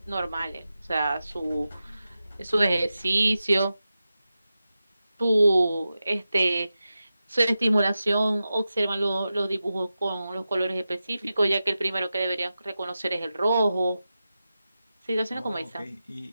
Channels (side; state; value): both; inverted; correlation -0.92